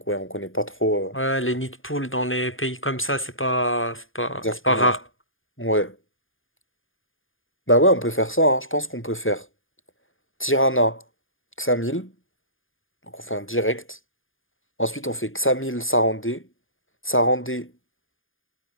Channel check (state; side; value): late; right; 0.59 ms